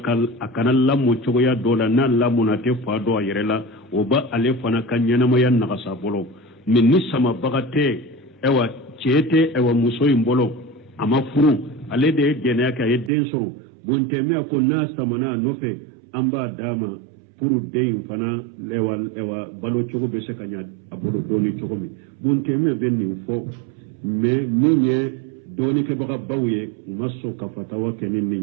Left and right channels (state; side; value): drops out; left; at 13.1 s